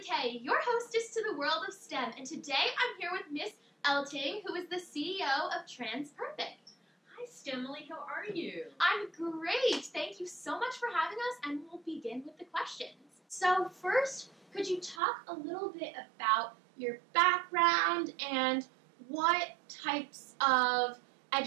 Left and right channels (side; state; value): left; drops out; at 15.0 s